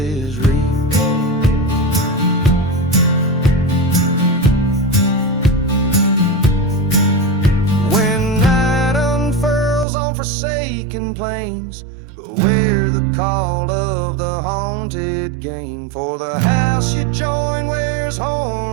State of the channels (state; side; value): drops out; left; at 9.9 s